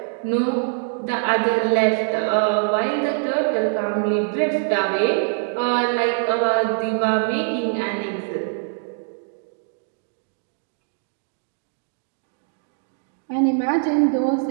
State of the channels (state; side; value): silent; left; digital silence